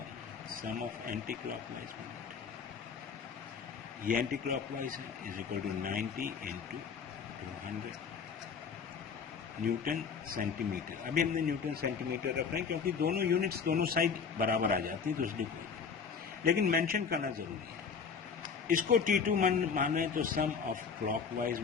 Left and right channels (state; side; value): quieter; right; 6.0 dB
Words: sum of anti clockwise moment, ये एंटी क्लॉकवाइज है, is equal to 90 into 200 newton centimetre. अभी हमने न्यूटन सेंटीमीटर रख रहे हैं क्योंकि दोनों यूनिट्स दोनों साइड बराबर आ जाती है, तो इसलिए कोई, लेकिन मेंशन करना जरूरी है। इसको T2 मान रहे हैं तो सम ऑफ क्लॉकवाइज